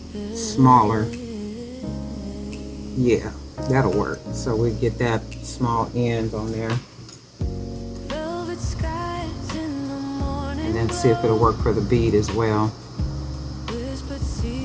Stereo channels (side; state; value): both; identical; correlation 1.00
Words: smaller. Yeah, that'll work. So we get that small end on there. And then see if it'll work for the bead as well.